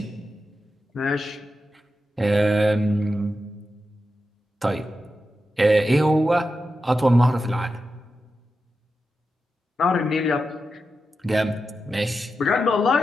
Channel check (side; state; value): both; normal; correlation 0.90